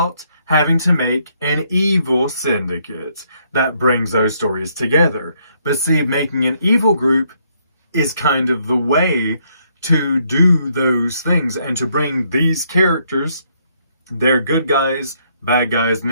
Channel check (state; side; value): inverted; both; correlation -0.71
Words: having to make an evil syndicate that brings those stories together? But see, making an evil group is kind of the way to do those things and to bring these characters, their good guys, bad guys,